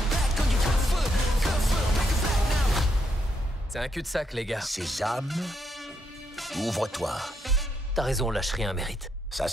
C'est un cul-de-sac, les gars. Sésame, ouvre-toi. T'as raison, lâche rien mérite. Ça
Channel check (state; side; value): normal; both; correlation 0.78